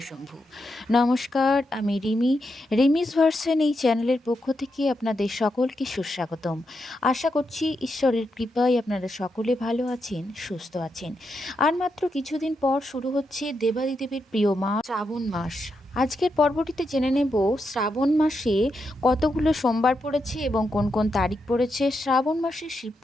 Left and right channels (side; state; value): both; normal; correlation 0.84